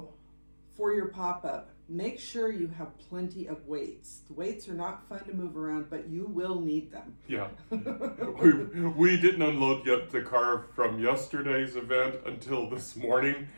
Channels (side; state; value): both; inverted; correlation -1.00